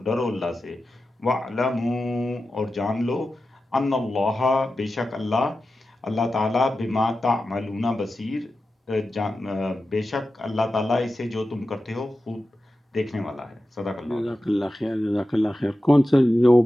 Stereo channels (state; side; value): normal; both; correlation 0.92